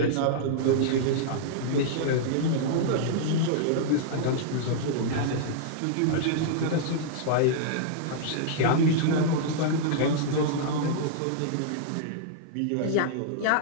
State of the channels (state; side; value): different; both; correlation -0.02